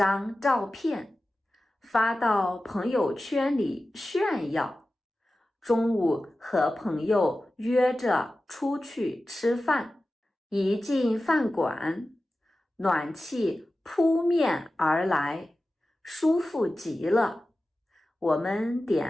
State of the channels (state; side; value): normal; both; correlation 0.94